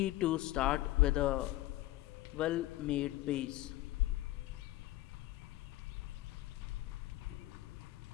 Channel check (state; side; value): quieter; right; 16.8 dB